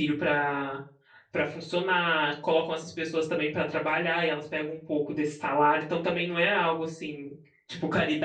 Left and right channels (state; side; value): identical; both; correlation 1.00